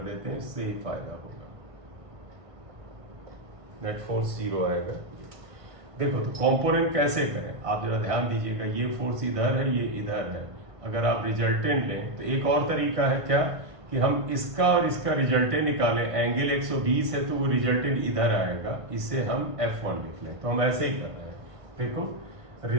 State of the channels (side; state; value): left; late; 1.5 ms